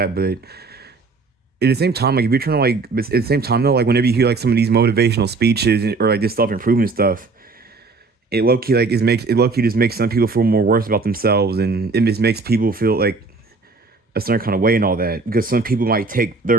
But at the same time, like if you're trying to like, but at the same time though, like whenever you hear like some of these motivational speeches or like this self improvement stuff, it low key just makes some people feel more worse about themselves, and it just makes people feel like a certain kind of way and all that, because some people might take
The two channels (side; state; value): left; quieter; 4.0 dB